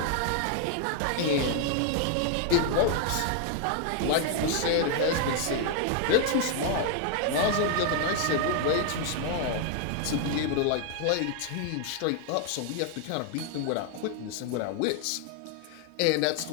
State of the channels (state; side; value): different; both; correlation 0.00